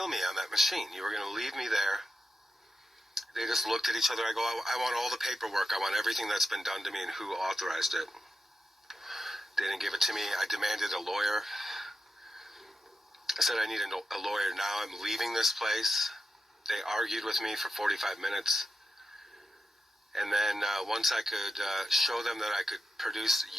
me on that machine. You were going to leave me there. They just looked at each other. I go, I want all the paperwork. I want everything that's been done to me and who authorized it. They didn't give it to me. I demanded a lawyer. I said, I need a lawyer now. I'm leaving this place. They argued with me for 45 minutes. And then once I could show them that I could produce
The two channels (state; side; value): normal; both; correlation 0.89